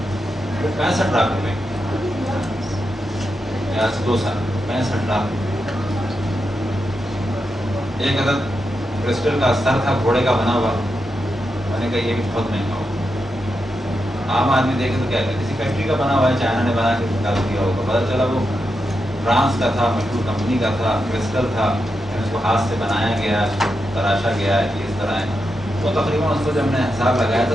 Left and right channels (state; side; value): normal; both; correlation 0.86